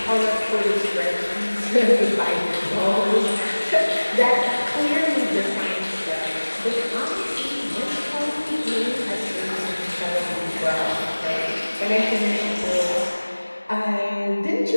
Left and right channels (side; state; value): both; inverted; correlation -1.00